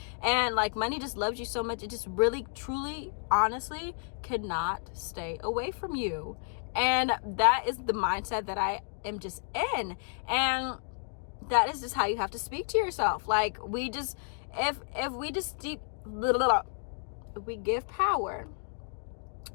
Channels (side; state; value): right; silent; digital silence